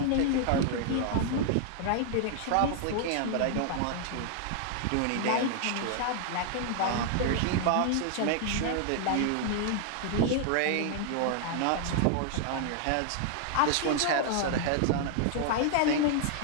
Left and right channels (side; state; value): both; different; correlation 0.00